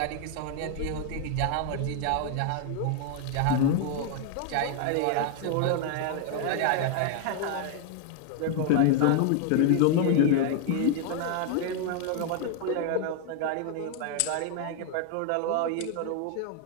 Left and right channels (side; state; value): both; different; correlation 0.00